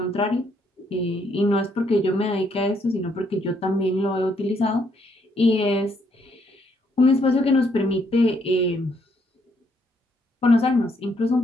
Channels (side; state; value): both; normal; correlation 0.72